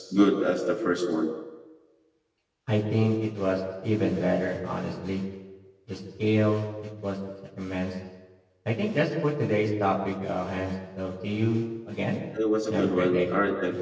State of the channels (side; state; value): both; identical; correlation 1.00